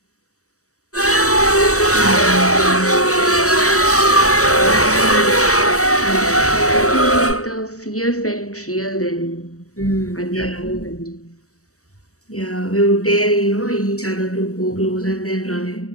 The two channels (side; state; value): right; late; 0.65 ms